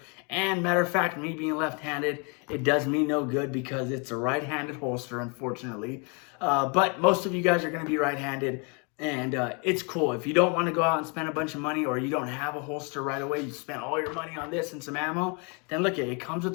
And matter of fact, me being left-handed, it does me no good because it's a right-handed holster, unfortunately. But most of you guys are going to be right-handed, and it's cool. If you don't want to go out and spend a bunch of money, or you don't have a holster right away, you spent all your money on this and some ammo, then look, it comes with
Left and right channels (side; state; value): right; quieter; 33.6 dB